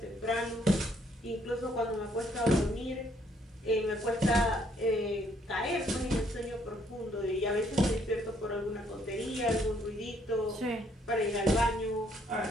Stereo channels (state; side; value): normal; both; correlation 0.68